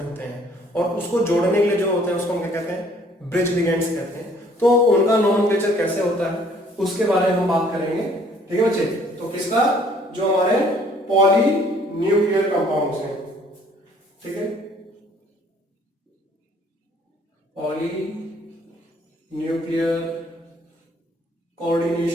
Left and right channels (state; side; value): normal; both; correlation 0.59